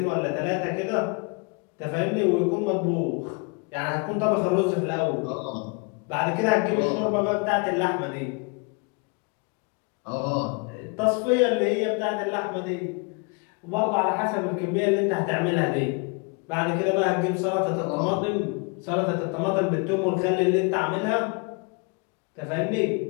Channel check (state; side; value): quieter; right; 33.0 dB